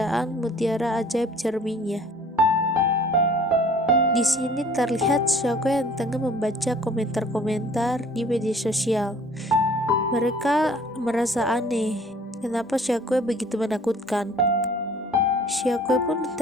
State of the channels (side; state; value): both; normal; correlation 0.52